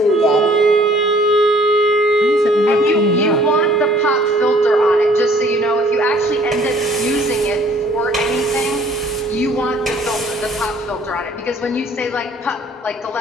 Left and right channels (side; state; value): both; normal; correlation 0.57